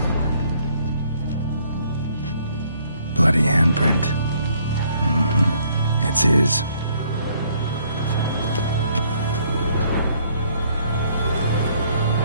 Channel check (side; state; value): both; inverted; correlation -0.65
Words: Bloody handprint. It's his.